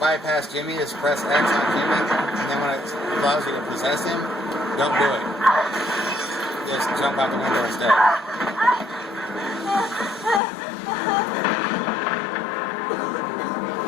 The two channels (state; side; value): drops out; right; at 10.4 s